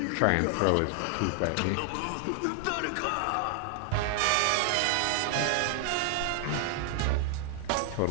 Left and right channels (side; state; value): both; different; correlation 0.00